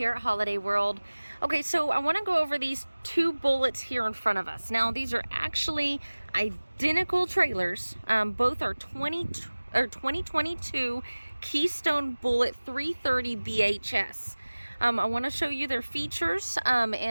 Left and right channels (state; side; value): inverted; both; correlation -1.00